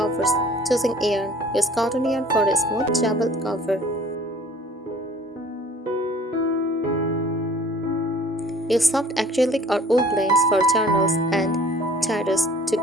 Choosing yarn: use cotton yarn for a smooth jabble cover. Use soft acrylic or wool blends for journals and diaries to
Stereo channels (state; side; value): normal; both; correlation 0.51